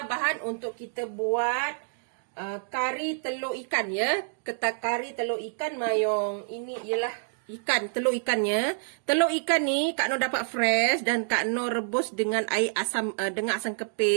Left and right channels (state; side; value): silent; left; digital silence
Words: bahan untuk kita buat kari telur ikan ya. Kari telur ikan mayong. Ini ialah telur ikannya. Telur ikan ni Kak Noh dapat fresh dan Kak Noh rebus dengan air asam dengan asam